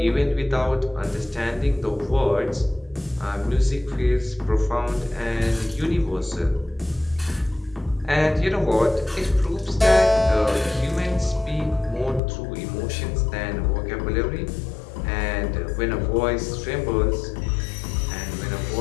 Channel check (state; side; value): drops out; right; at 12.2 s